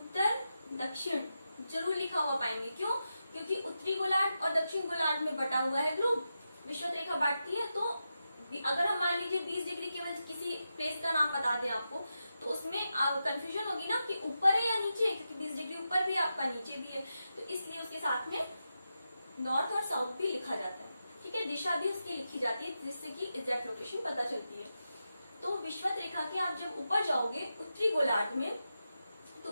दक्षिण जरूर लिखा हुआ पाएंगे। क्यों? क्योंकि उत्तरी गोलार्ध और दक्षिण गोलार्ध में बटा हुआ है ग्लोब, विषुवत रेखा बांटती है। तो अगर हम मान लीजिए 20 डिग्री केवल किसी प्लेस का नाम बता दें आपको, तो उसमें कंफ्यूजन होगी ना कि ऊपर है या नीचे, क्योंकि 20 डिग्री ऊपर भी है आपका, नीचे भी है, तो इसलिए उसके साथ में नॉर्थ और साउथ भी लिखा जाता है, ठीक है। दिशा भी उसकी लिखी जाती है जिससे कि एग्जैक्ट लोकेशन पता चलती है। तो विषुवत रेखा के आप जब ऊपर जाओगे उत्तरी गोलार्ध में, तो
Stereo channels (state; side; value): inverted; both; correlation -0.89